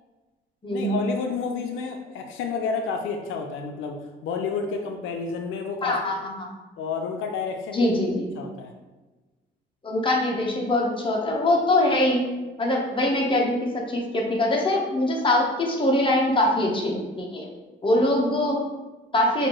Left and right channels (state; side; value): normal; both; correlation 0.41